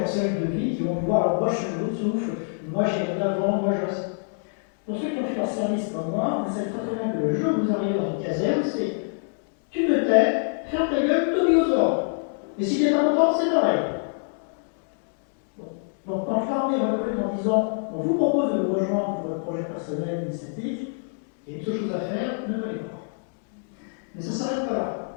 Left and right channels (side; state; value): right; silent; 61 dB below the other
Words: de vie, qui vont pouvoir leur broche sur l'autre souffle. Moi j'irai de l'avant, moi je reste. Pour ceux qui ont fait leur service comme moi, vous savez très bien que le jour où vous arrivez dans une caserne, c'est tu me tais, ferme ta gueule, t'obéis aux ordres. Et si tu n'es pas content, c'est pareil. Donc quand l'armée recrute en disant on vous propose de nous rejoindre pour votre projet personnel, initiatique, il y a une seule chose à faire, ne pas les voir. Mais ça ne s'arrête pas là.